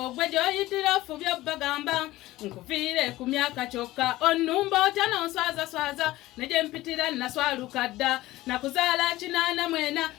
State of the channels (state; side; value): quieter; right; 17.3 dB